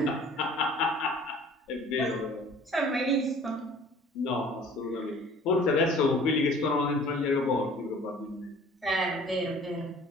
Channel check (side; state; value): both; normal; correlation 0.49